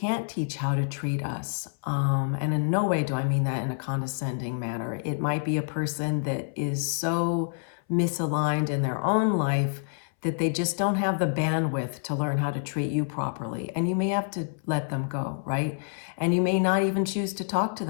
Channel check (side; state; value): right; silent; 60 dB below the other